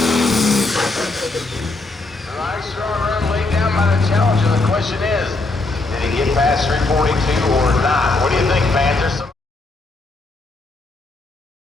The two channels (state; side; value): quieter; right; 3.2 dB